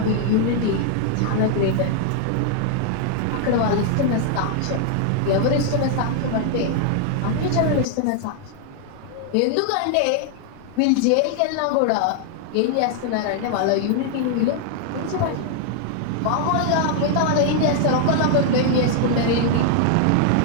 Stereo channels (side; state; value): both; different; correlation 0.00